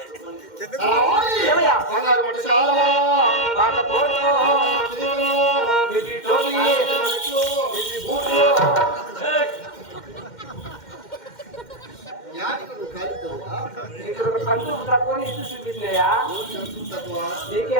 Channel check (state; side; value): late; right; 2.1 ms